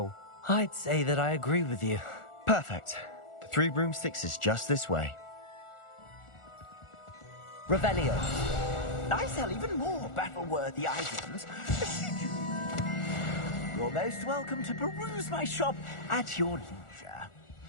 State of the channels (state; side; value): late; right; 1.4 ms